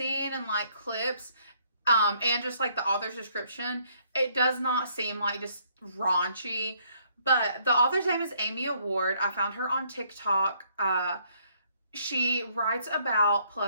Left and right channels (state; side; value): inverted; both; correlation -0.67